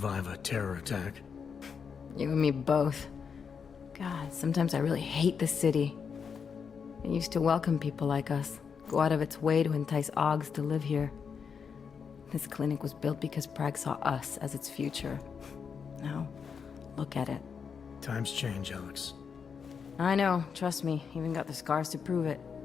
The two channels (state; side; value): quieter; right; 6.3 dB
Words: a terror attack. You and me both. God, sometimes I really hate this city. It used to welcome people like us, go out of its way to entice Augs to live here. This clinic was built because Prague saw us as its future. Now, look at it. Times change, Alex. I know, trust me, even got the scars to prove it.